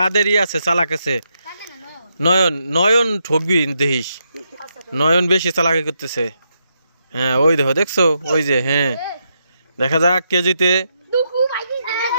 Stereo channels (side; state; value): both; inverted; correlation -0.81